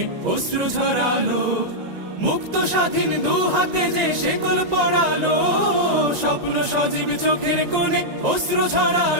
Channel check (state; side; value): late; left; 1.9 ms